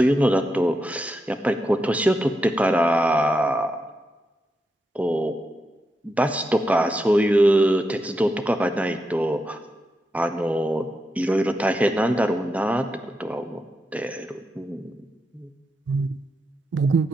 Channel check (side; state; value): both; normal; correlation 0.85